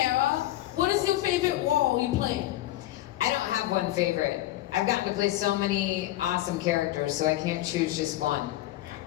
What is your favorite role you play? I don't have one favorite. I've gotten to play so many awesome characters, so I can't choose just one.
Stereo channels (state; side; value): quieter; right; 15.2 dB